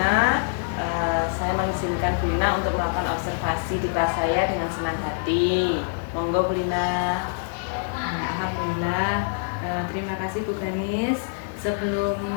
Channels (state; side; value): silent; right; 62 dB below the other